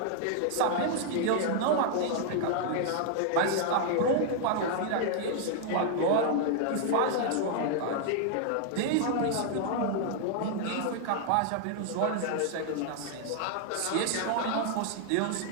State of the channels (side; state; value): both; different; correlation 0.00